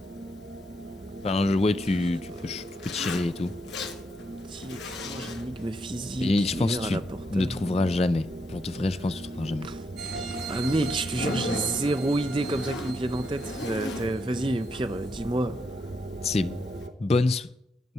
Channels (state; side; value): normal; both; correlation 0.79